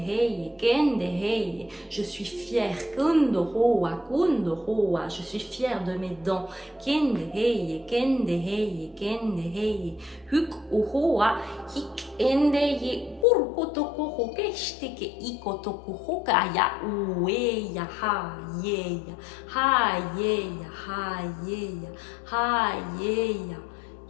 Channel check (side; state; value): right; drops out; at 13.2 s